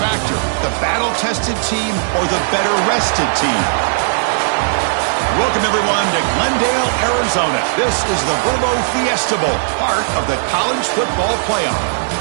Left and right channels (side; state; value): left; silent; digital silence